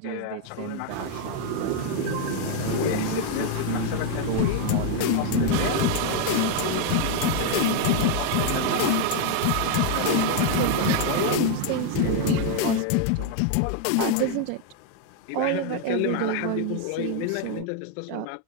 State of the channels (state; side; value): different; both; correlation 0.00